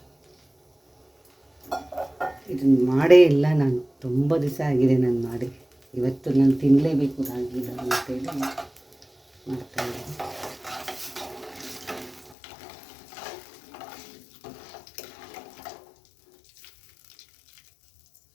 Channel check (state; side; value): drops out; right; at 12.4 s